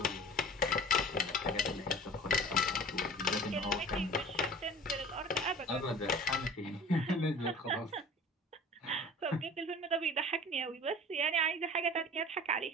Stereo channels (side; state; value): both; normal; correlation 0.42